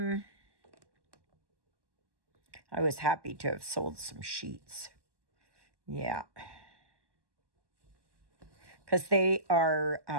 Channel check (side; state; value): left; late; 1.1 ms